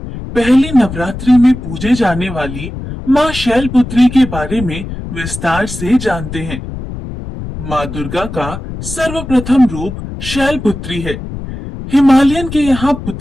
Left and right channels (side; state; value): left; noise; rumble, 9 dB below the sound